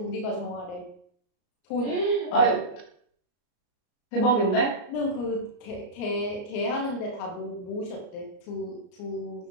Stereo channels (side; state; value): right; late; 34 ms